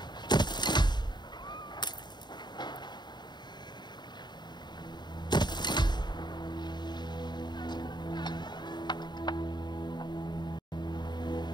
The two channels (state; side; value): late; right; 0.21 ms